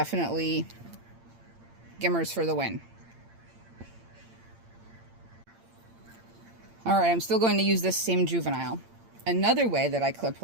Gimars for the win. Alright, I'm still going to use this same juvenile. Another way that I clip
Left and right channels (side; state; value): left; late; 8.8 ms